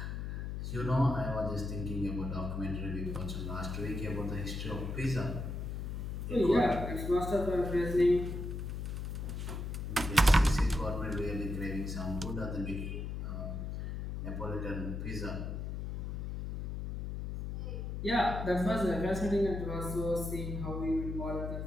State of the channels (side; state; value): left; noise; hum, 4 dB below the sound